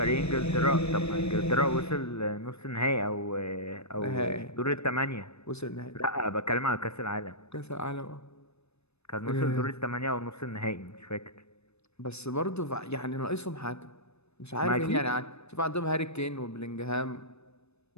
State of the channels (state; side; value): late; right; 0.80 ms